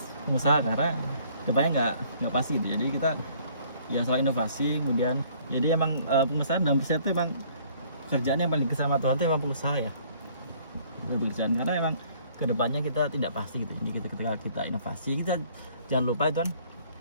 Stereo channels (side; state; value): both; inverted; correlation -0.59